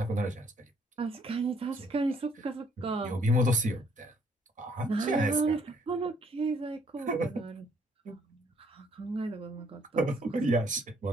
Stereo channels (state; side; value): normal; both; correlation 0.66